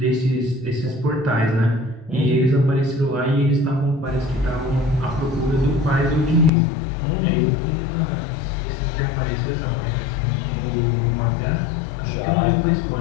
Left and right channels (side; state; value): right; drops out; at 6.5 s